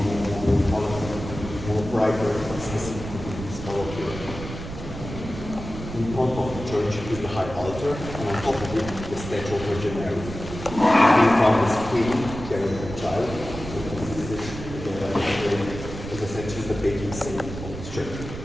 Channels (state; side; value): noise; right; rumble, 10 dB below the sound